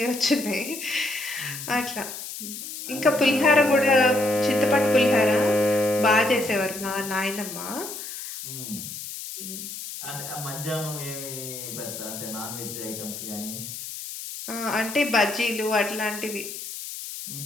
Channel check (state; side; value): noise; left; hiss, 9 dB below the sound